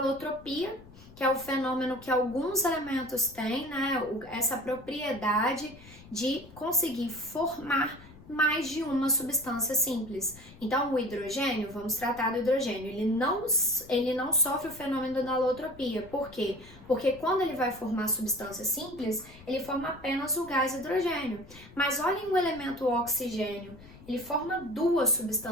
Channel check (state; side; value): noise; left; rumble, 20 dB below the sound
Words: que é o fenômeno que alguns elementos têm, né? Essa propriedade de conseguir formar mais de uma substância simples. Então, o hidrogênio, vamos tratar do hidrogênio, ele não sofre o fenômeno da alotropia. Por quê? Porque quando ele vai formar substância simples, ele forma apenas o gás hidrogênio. Mas olhem o elemento oxigênio. Ele forma duas